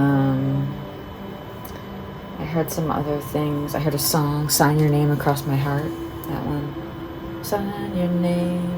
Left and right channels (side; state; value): both; identical; correlation 1.00